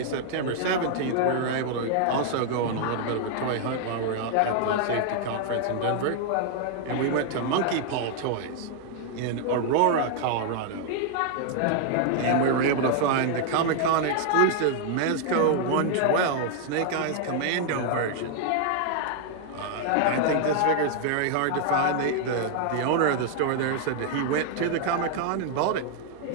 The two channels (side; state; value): both; different; correlation 0.00